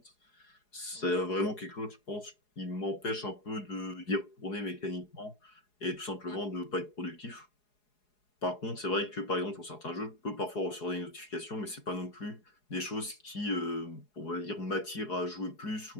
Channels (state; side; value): late; right; 4.8 ms